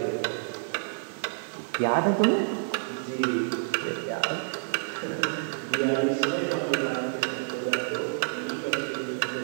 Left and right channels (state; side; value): silent; left; digital silence